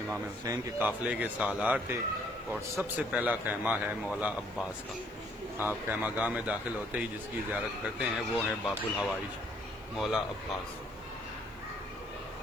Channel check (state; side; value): noise; right; hiss, 27 dB below the sound